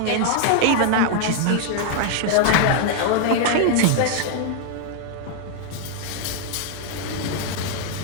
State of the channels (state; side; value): different; both; correlation 0.00